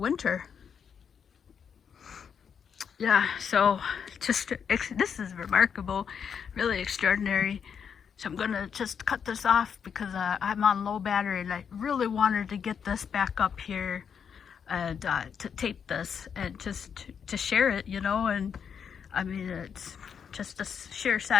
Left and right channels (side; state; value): right; quieter; 7.2 dB